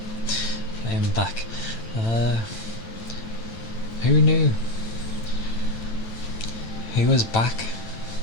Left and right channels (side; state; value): right; late; 9.0 ms